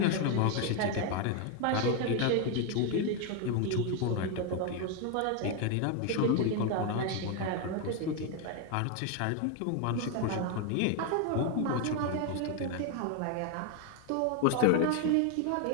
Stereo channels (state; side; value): different; both; correlation 0.01